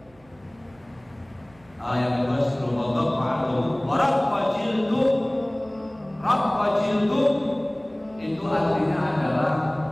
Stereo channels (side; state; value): right; noise; hum, 29 dB below the sound